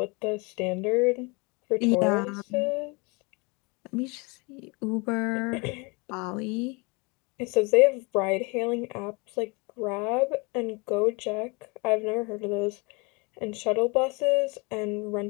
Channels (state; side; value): quieter; right; 29.2 dB